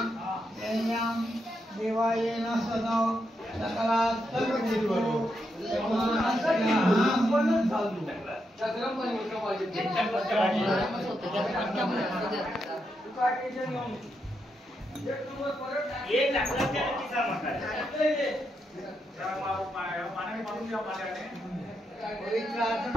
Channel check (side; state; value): both; normal; correlation 0.82